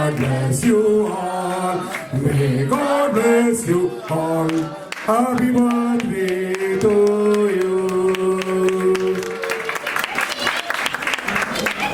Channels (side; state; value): both; identical; correlation 1.00